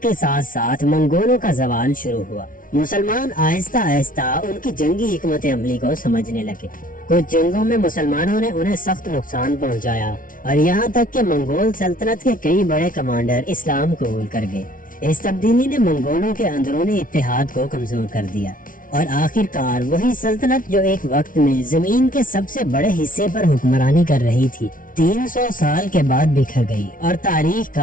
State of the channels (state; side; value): late; right; 0.39 ms